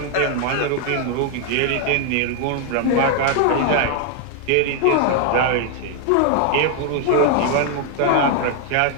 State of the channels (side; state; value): both; different; correlation 0.00